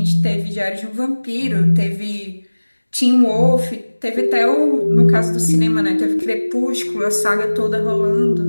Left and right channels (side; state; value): both; inverted; correlation -1.00